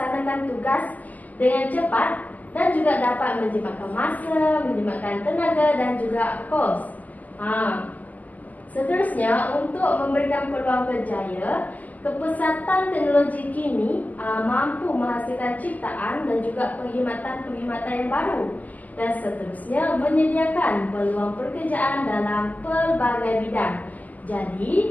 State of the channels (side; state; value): right; late; 0.076 ms